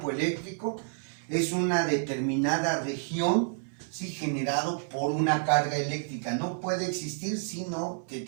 eléctrico es una determinada región, ¿sí?, generado por una carga eléctrica. No puede existir sino que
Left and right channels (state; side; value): silent; left; digital silence